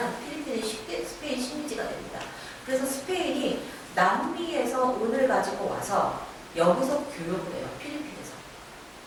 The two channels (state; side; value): identical; both; correlation 1.00